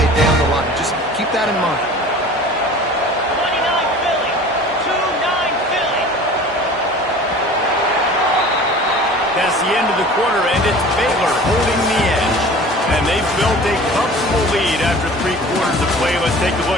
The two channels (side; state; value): both; normal; correlation 0.42